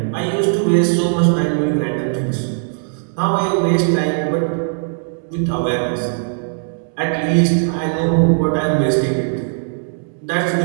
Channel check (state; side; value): silent; left; 67 dB below the other